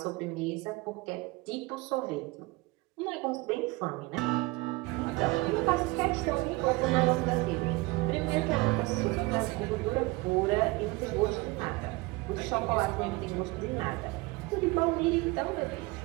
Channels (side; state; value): left; quieter; 22.5 dB